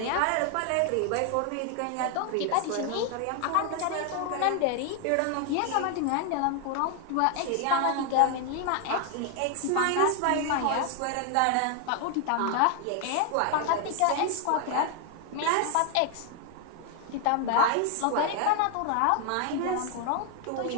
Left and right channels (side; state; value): both; different; correlation 0.00